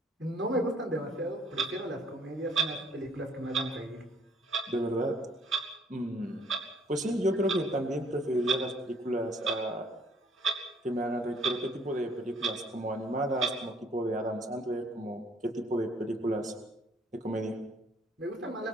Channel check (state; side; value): normal; both; correlation 0.61